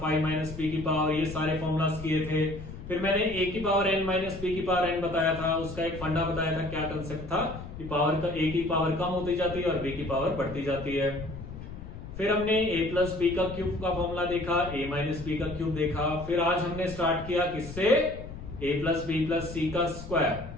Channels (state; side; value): noise; left; rumble, 12 dB below the sound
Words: माइनस बी की पावर, ये सारे फॉर्मूलाज किए थे। फिर मैंने ए की पावर एन माइनस बी की पावर एन बताया था, उसका एक फंडा बताया था। क्या कंसेप्ट था कि पावर का ए की पावर कम होती जाती है और बी की पावर बढ़ती जाती है। फिर हमने ए प्लस बी का क्यूब का फॉर्मूला देखा, ए माइनस बी का क्यूब देखा। फिर आज हमने स्टार्ट किया किससे, ए प्लस बी प्लस सी का स्क्वायर।